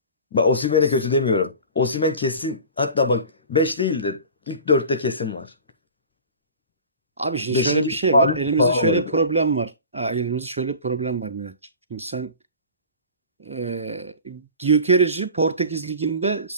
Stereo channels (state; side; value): inverted; both; correlation -0.39